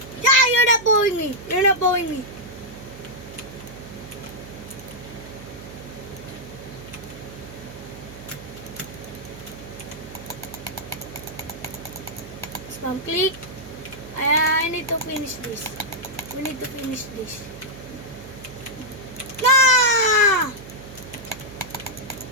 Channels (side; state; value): right; noise; hum, 15 dB below the sound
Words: Yeah, you're not bowing me. You're not bowing me. Spam click. I need to finish this. We need to finish this. Ah!